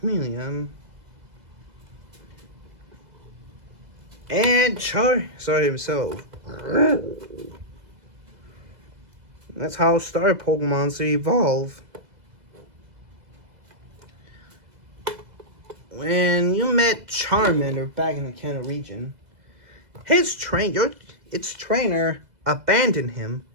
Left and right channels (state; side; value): late; left; 2.0 ms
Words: And Charizard himself. That's how Star Pokemon to evolve. When you met Charmander back in the Kanto region, its trainer abandoned him